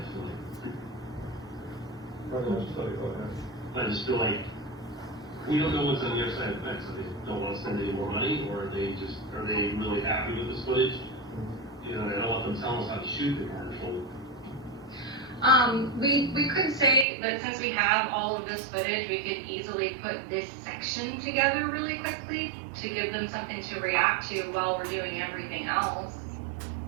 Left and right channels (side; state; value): left; drops out; at 17.1 s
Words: I feel like, I just feel like, we don't know what's on the other side of the fence, so they don't wanna spend any more money, or are they really happy with this footage? You know, I don't want them telling us how to shoot the commercial. We could say that since we have all of this footage, we could easily put this section together really quickly to give them something to react to while we're doing everything else.